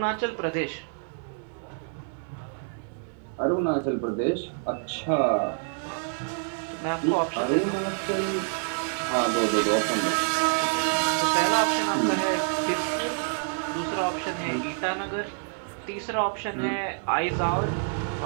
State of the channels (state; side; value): silent; left; 60 dB below the other